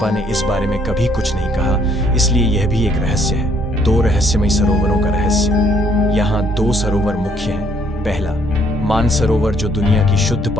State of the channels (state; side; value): normal; both; correlation 0.66